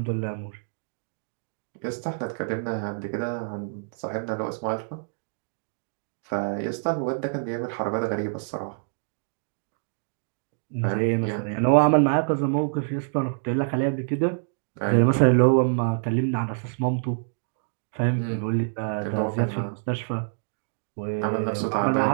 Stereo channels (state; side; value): silent; left; digital silence